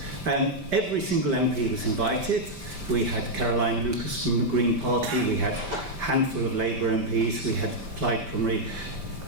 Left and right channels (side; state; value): left; late; 5.1 ms